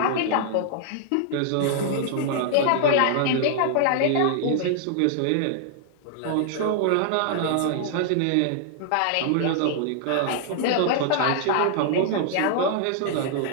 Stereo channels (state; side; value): different; both; correlation -0.01